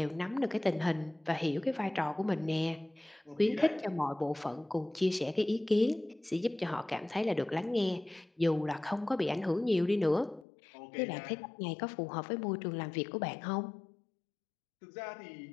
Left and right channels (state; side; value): drops out; right; at 10.5 s